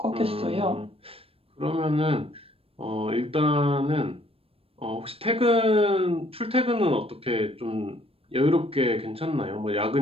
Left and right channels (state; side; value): late; left; 0.28 ms